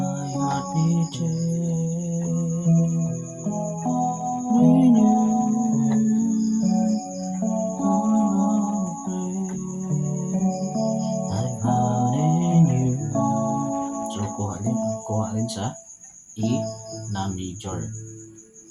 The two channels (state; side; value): identical; both; correlation 1.00